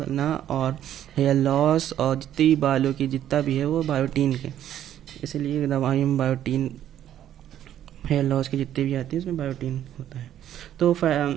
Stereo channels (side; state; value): left; quieter; 11.1 dB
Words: और हेयर लॉस और जितनी बालों की जितना भी है वो बायोटीन के, इसलिए दवाई में बायोटीन, हेयर लॉस की जितनी भी आती है उसमें बायोटीन होता है। तो